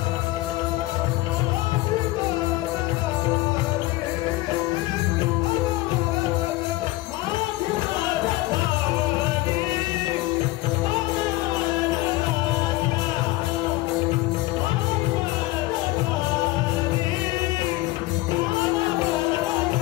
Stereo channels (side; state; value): right; quieter; 18.4 dB